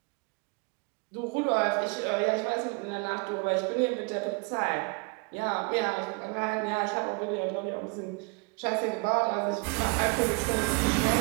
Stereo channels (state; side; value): quieter; left; 31.5 dB